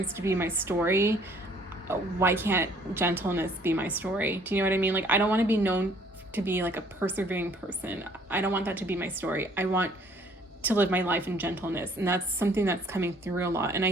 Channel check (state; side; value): normal; both; correlation 0.59